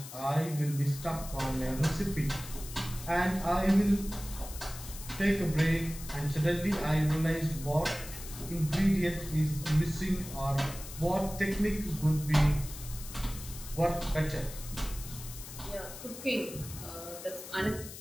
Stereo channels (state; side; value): noise; left; hiss, 13 dB below the sound